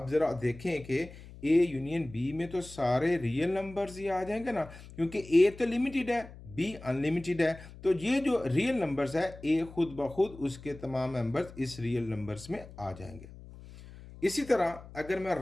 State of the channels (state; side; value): noise; left; hum, 17 dB below the sound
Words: जरा देखें कि ए यूनियन बी में तो सारे रियल नंबर्स ही आ जाएंगे ना, क्योंकि ए तो लिमिटेड है, बी अनलिमिटेड है। तो ये जो रियल नंबर्स है ए खुद ब खुद उसके तमाम मेंबर्स इस रियल नंबर्स में आ जाएंगे। इसी तरह अगर मैं